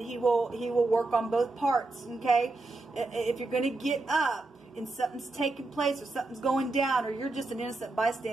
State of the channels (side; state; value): left; quieter; 3.2 dB